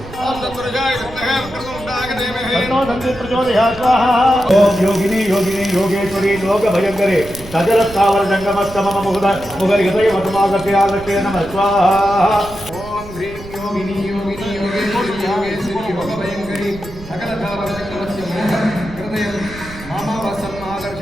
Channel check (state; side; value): noise; right; rumble, 15 dB below the sound